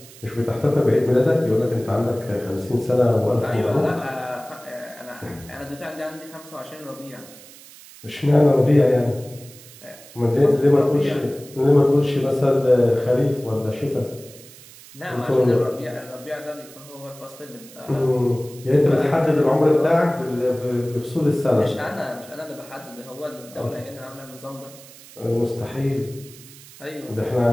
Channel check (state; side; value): noise; right; hiss, 20 dB below the sound